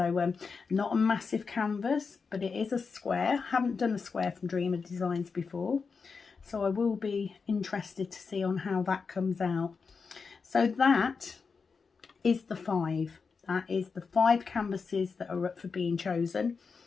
not a massive canvas, but it is a square. Haven't done a square from Dreamer Designs before, so I will be interested to see on how that comes out. So that is the 5. That is the 5 canvases that are up for being chosen.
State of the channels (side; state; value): right; quieter; 5.1 dB